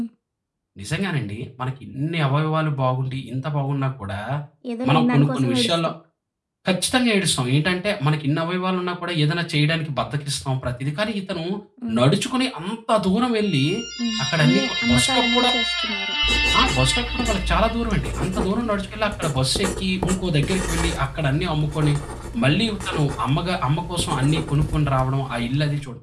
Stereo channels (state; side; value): identical; both; correlation 1.00